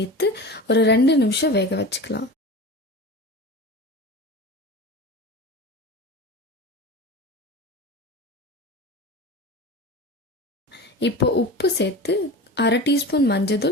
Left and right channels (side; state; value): both; normal; correlation 0.32